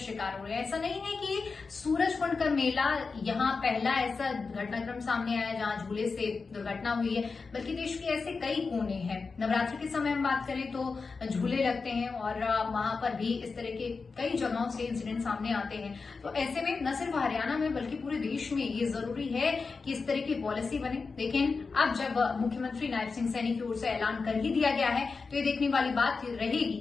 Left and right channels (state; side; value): quieter; right; 4.5 dB